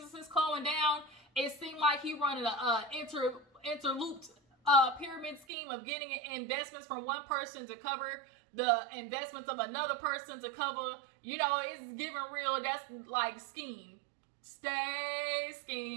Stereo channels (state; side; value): drops out; left; at 5.5 s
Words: going down. It seemed like he running a interlooped pyramid scheme of getting investments from one person to cover the investments of another person to cover. You know, it's giving real. That's like scheme. Stay